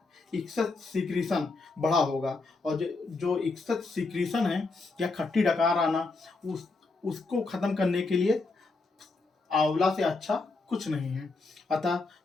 इक्सत सिक्रीशन बढ़ा होगा और जो इक्सत सिक्रीशन है या खट्टी डकार आना उसको खत्म करने के लिए आंवला से अच्छा कुछ नहीं है। अतः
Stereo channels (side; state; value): right; quieter; 3.7 dB